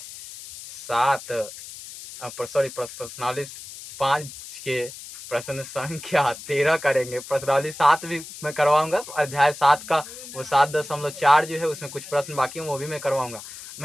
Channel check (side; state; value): left; noise; hiss, 14 dB below the sound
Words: प्रश्नावली 5 के प्रश्न संख्या 13 करेंगे। प्रश्नावली 7 भी मैं करवाऊंगा। अध्याय 7 का वो 7.4 जो है उसमें कुछ प्रश्न बाकी हैं, वो भी मैं करवाऊंगा।